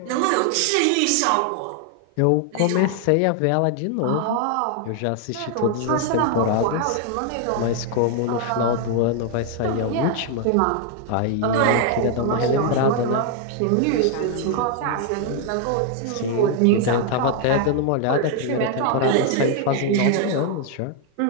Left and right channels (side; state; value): both; different; correlation 0.00